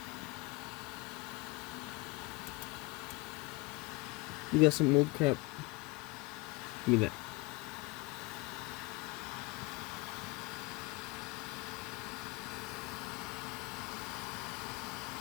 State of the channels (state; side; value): quieter; right; 23.7 dB